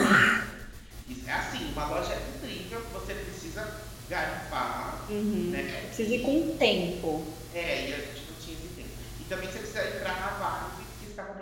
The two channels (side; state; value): both; identical; correlation 1.00